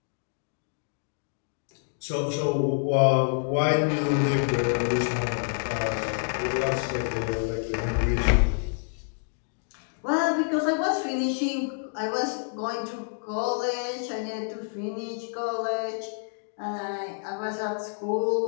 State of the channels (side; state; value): right; silent; digital silence